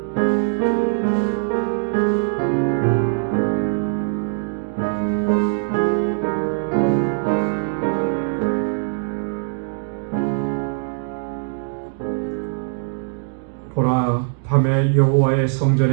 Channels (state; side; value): silent; left; digital silence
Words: 보라, 밤에 여호와의